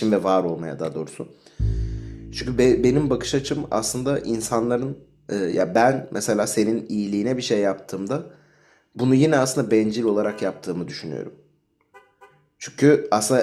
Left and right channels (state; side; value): identical; both; correlation 1.00